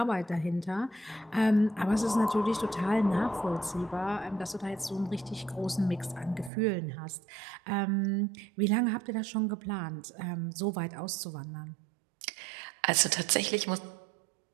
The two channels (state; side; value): drops out; left; at 6.5 s